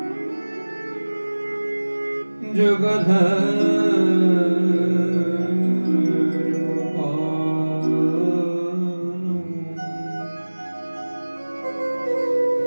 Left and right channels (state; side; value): inverted; both; correlation -1.00